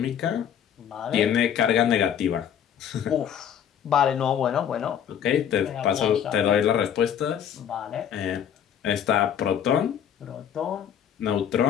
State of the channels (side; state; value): right; quieter; 9.0 dB